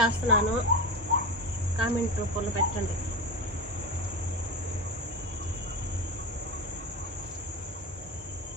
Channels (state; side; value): normal; both; correlation 0.23